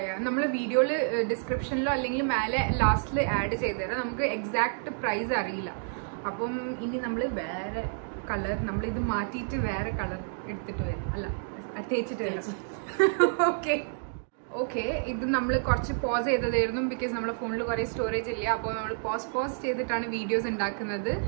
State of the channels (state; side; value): silent; left; digital silence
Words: നമ്മള് വീഡിയോയില് ഡിസ്ക്രിപ്ഷനിലോ അല്ലെങ്കിൽ മേലെ ലാസ്റ്റില് ആഡ് ചെയ്തുതരാം. നമുക്ക് എക്സാക്ട് പ്രൈസ് അറിയില്ല. അപ്പം ഇനി നമ്മള് വേറെ കളർ, നമ്മളിത് മാറ്റിയിട്ട് വേറെ കളർ എടുത്തിട്ട് വരും, അല്ല തേച്ചിട്ട് വരും. ഓക്കെ, ഇത് നമ്മൾ കുറച്ച് പോസ് ചെയ്തതായിരുന്നു, ബിക്കോസ് നമ്മുടെ ഫോണിൽ കുറെ സ്റ്റോറേജ് ഇല്ല. അപ്പോൾ നമ്മൾ പോസ് ചെയ്തിട്ടാണ് വീഡിയോസ് ഉണ്ടാക്കുന്നത്.